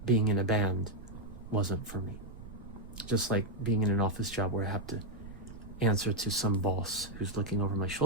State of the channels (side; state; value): right; noise; rumble, 15 dB below the sound